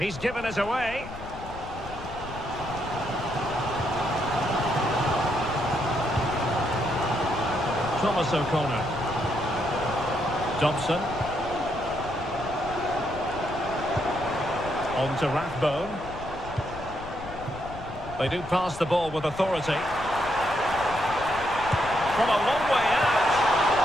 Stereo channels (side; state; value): left; noise; rumble, 13 dB below the sound